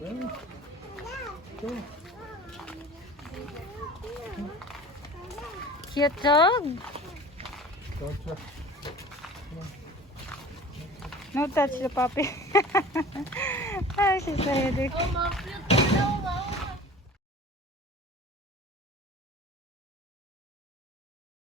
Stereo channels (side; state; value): both; normal; correlation 0.42